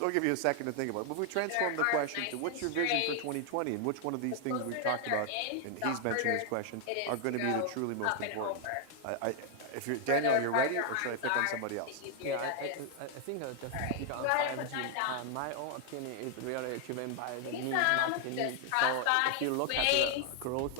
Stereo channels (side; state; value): both; different; correlation 0.00